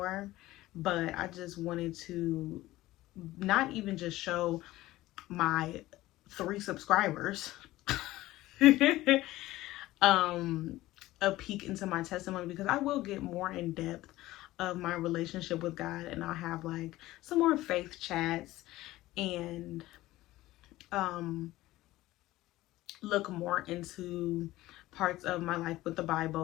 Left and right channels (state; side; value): quieter; right; 17.0 dB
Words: but I just wanted to not even just show my 3 subscribers a peek into my testimony, because I will get more in depth of my relationship with God, and I'll have like some more faith chats and look more into parts of my life with the